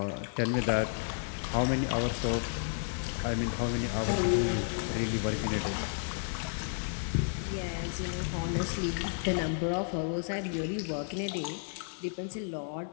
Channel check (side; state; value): right; silent; digital silence